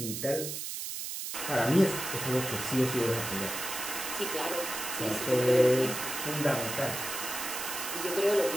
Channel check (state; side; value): noise; right; hiss, 5 dB below the sound